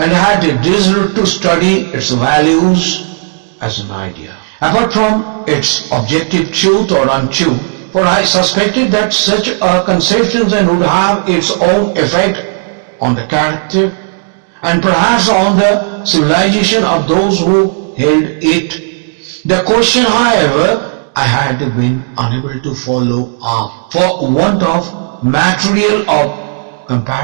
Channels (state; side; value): silent; left; digital silence